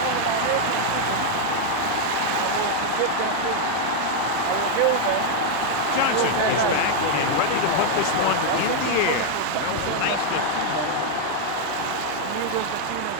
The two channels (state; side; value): different; both; correlation 0.00